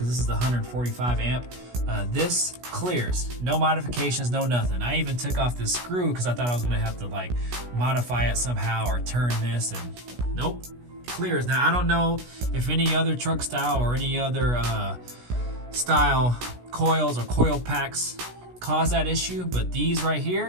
this is the 145 amp, this clears. No modifications, no nothing. I even took off this screw because I thought I was gonna have to like modify it somehow or turn this, and nope, clears. Now I don't know if any other truck style or any other style coils or coil packs cause that issue, but these right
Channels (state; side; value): late; left; 16 ms